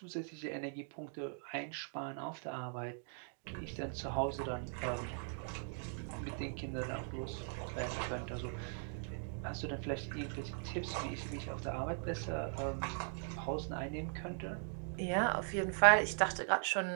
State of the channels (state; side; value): silent; left; 51 dB below the other